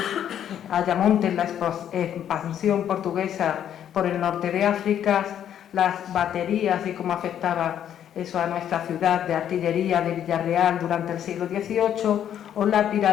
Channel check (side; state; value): right; quieter; 10.0 dB